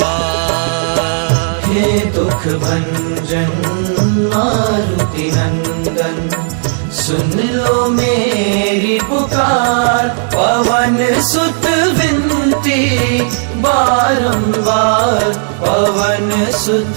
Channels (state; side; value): silent; left; digital silence